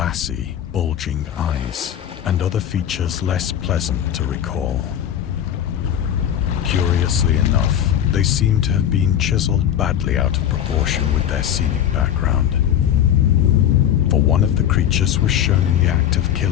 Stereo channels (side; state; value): right; quieter; 10.2 dB